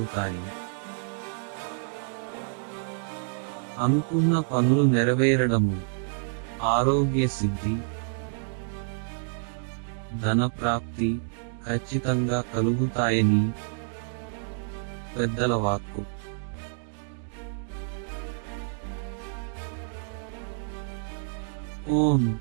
అనుకున్న పనులు నెరవేరడము, ఆరోగ్య సిద్ధి, ధన ప్రాప్తి ఖచ్చితంగా కలుగుతాయని పెద్దల వాక్కు. ఓం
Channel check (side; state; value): left; silent; digital silence